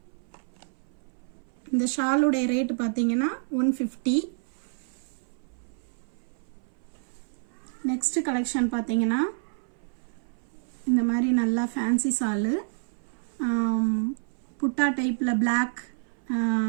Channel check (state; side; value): silent; left; 57 dB below the other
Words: இந்த ஷாலுடைய ரேட் பாத்தீங்கன்னா 150. நெக்ஸ்ட் கலெக்ஷன் பாத்தீங்கன்னா இந்த மாதிரி நல்லா ஃபேன்சி ஷால் புட்டா டைப்ல